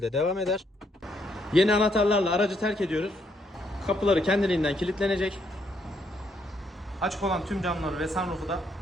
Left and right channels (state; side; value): normal; both; correlation 0.73